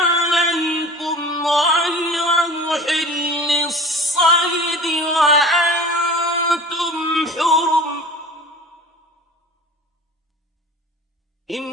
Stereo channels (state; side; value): normal; both; correlation 0.40